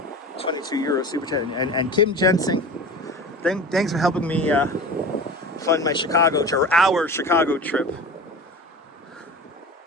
22 euro super chat. And Kim Jensen, thanks for helping me fund my Chicago or our Chicago trip.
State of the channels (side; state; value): both; normal; correlation 0.34